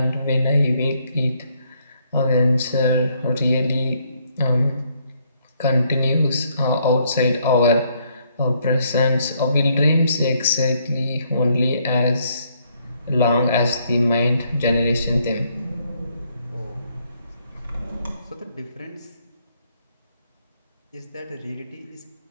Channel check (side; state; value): both; inverted; correlation -0.71